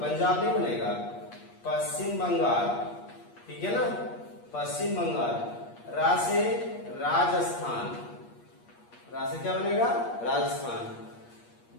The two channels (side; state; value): right; late; 8.5 ms